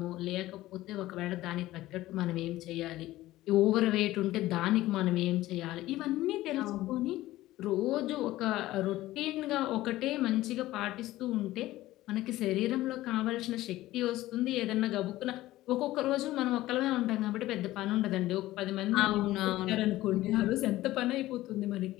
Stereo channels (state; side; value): quieter; right; 16.3 dB